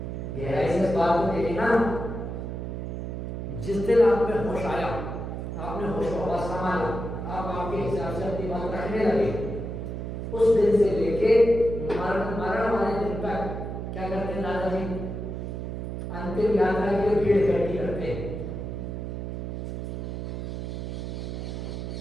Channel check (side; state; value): right; noise; hum, 5 dB below the sound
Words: गहराई से इस बात को देखे ना, जिस दिन आप में होश आया, आपने होश को संभाला, आप आपके हिसाब से अपनी बात रखने लगे, उस दिन से लेके मरण वाले दिन तक क्या करते हैं दादाजी? अंतिम यात्रा के लिए भीड़ इकट्ठी करते हैं।